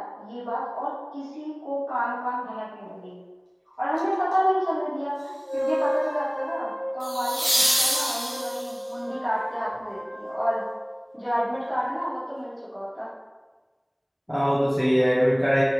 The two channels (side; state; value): both; identical; correlation 1.00